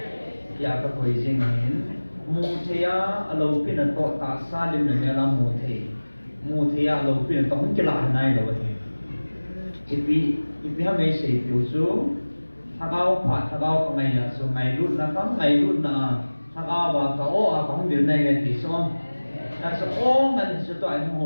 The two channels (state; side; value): inverted; both; correlation -1.00